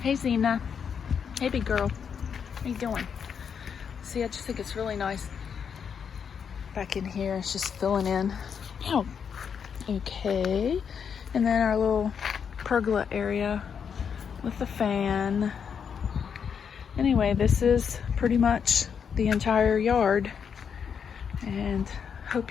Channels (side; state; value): right; quieter; 7.0 dB